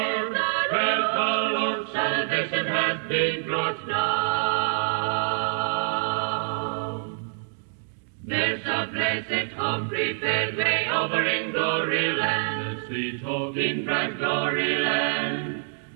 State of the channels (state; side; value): silent; left; digital silence